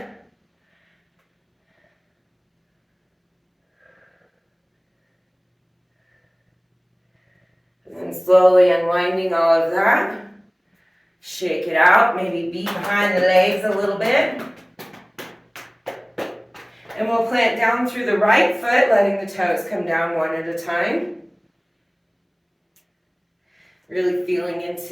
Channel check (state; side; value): identical; both; correlation 1.00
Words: And slowly unwinding all of that. Shake it out, maybe beat behind the legs a little bit. And we'll plant down through the right foot, letting the toes come down one at a time. Really feeling